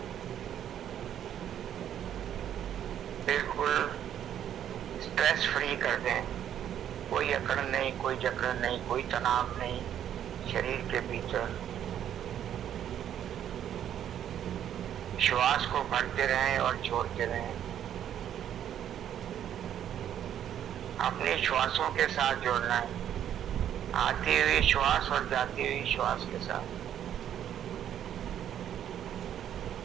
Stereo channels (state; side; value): quieter; left; 10.2 dB